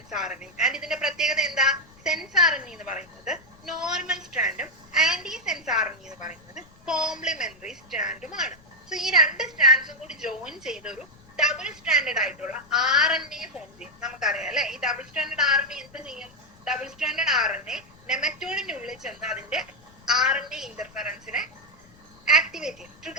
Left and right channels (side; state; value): left; noise; rumble, 26 dB below the sound